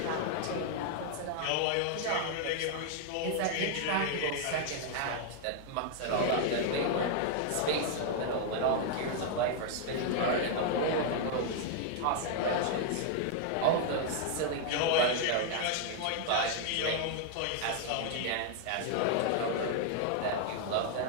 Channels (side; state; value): both; different; correlation 0.00